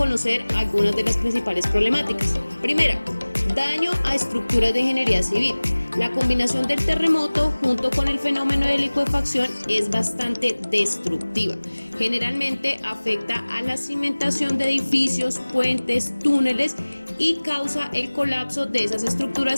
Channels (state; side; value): inverted; both; correlation -1.00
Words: algunas de las principales problemáticas. Primera, daño a estructuras de ingeniería civil. La combinación del terremoto junto con el fenómeno de licuefacción es bastante destructiva. Generalmente afecta a la cimentación de edificios, puentes, túneles y causa el colapso de esas